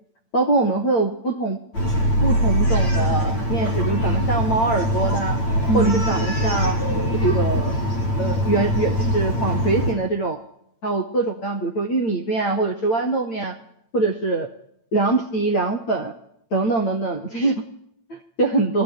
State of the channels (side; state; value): right; late; 8.8 ms